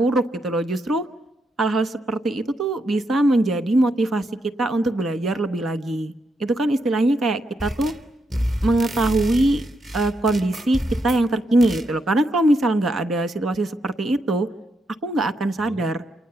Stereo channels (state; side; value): normal; both; correlation 0.81